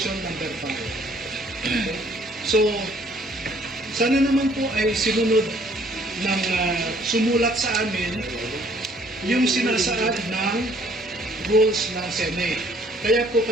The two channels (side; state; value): both; normal; correlation 0.61